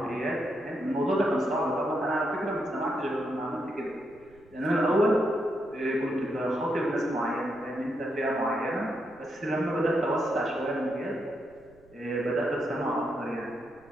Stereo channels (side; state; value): right; noise; rumble, 28 dB below the sound